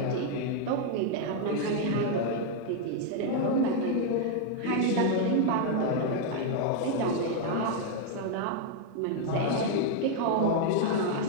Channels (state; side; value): different; both; correlation 0.00